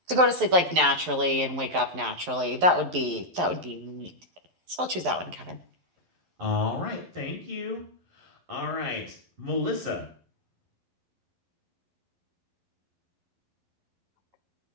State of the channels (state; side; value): late; left; 11 ms